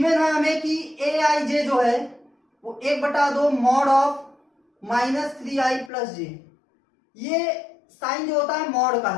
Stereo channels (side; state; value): right; drops out; at 5.9 s